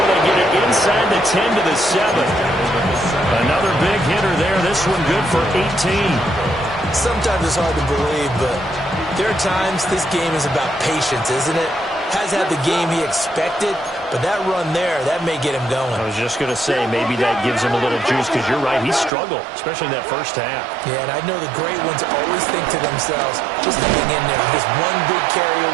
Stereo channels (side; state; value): left; drops out; at 19.1 s